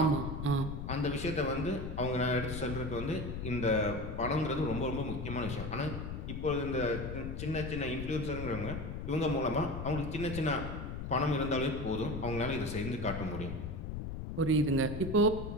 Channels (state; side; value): noise; left; rumble, 5 dB below the sound